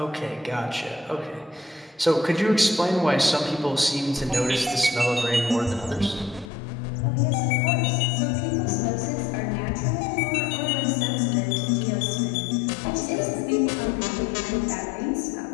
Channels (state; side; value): drops out; right; at 6.5 s